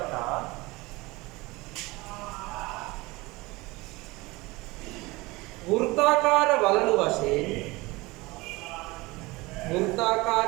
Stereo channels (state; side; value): quieter; left; 22.5 dB